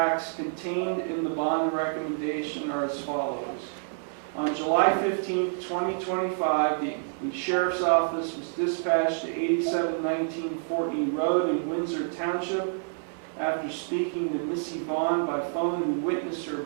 contained in the bond recommendation are as follows. On July 15, 2025, the Sheriff's Office was dispatched to 8719 Fortney Road in Windsor Township after speaking to Missy Vaughn by phone, who witnessed her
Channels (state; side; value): silent; left; 59 dB below the other